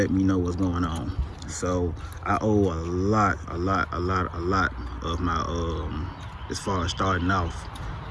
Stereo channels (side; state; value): both; identical; correlation 1.00